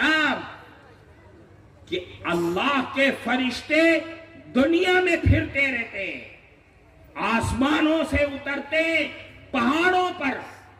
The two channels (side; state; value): both; identical; correlation 1.00